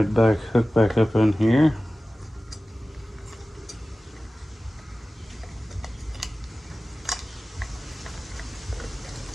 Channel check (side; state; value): both; normal; correlation 0.97